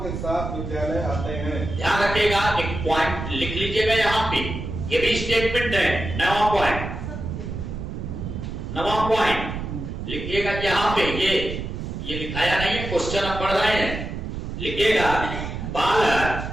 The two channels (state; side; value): noise; right; rumble, 6 dB below the sound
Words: के साथ विद्यालय आते हैं। ध्यान रखिएगा, एक पॉइंट लिख लीजिएगा यहाँ पे, ये भी स्टेटमेंट है। नवा पॉइंट, नवा पॉइंट लिखिएगा यहाँ पे। ये लिखाया नहीं है, क्वेश्चन आप पढ़ रहे हैं। लिखिएगा, बालक